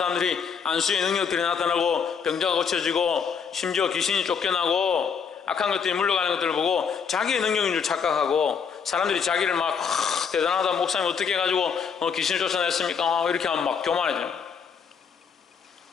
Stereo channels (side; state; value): right; quieter; 6.5 dB